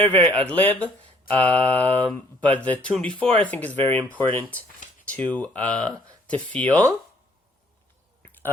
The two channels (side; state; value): both; normal; correlation 0.61